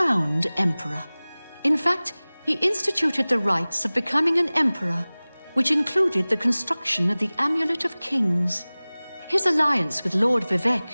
Emperor. In fact, he instituted the rites of becoming an Emperor, which included the construction of the Amulet of Kings. His alliance with Lord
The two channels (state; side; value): inverted; both; correlation -0.99